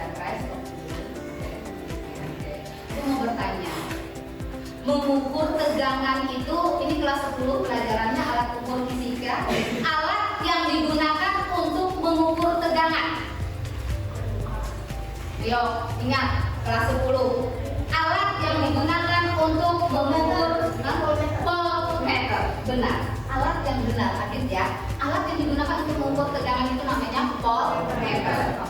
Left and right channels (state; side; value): identical; both; correlation 1.00